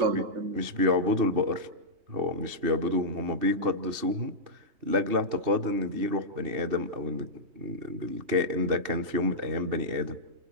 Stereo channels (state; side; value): late; left; 2.7 ms